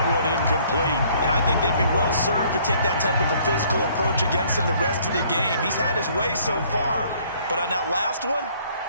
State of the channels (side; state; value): both; inverted; correlation -0.60